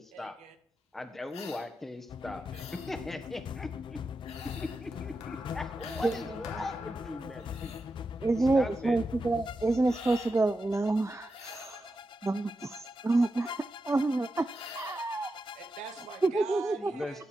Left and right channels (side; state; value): both; normal; correlation 0.88